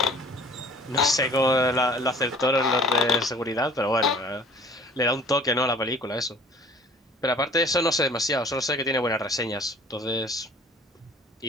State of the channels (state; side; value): normal; both; correlation 0.49